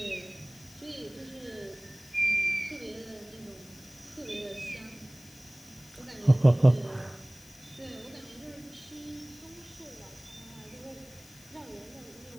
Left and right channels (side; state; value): left; noise; hiss, 22 dB below the sound